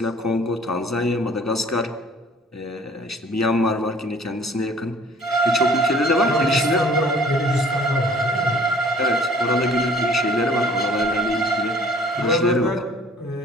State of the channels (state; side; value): normal; both; correlation 0.53